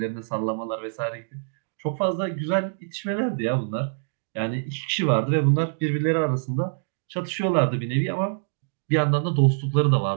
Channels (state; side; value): silent; left; digital silence